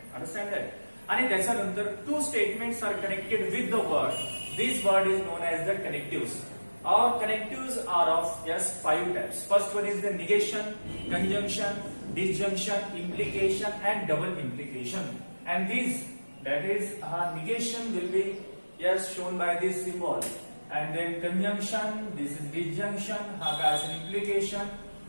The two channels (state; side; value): inverted; both; correlation -1.00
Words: Understand that? आणि त्याच्यानंतर two statements are connected with the word. This word is known as the connectives. Our connectives are of five types. First one is the negation, conjunction, disjunction, implication, and double implication. And these, that is, negation will be shown by this symbol. And then conjunction, this is disjunction, has an implication.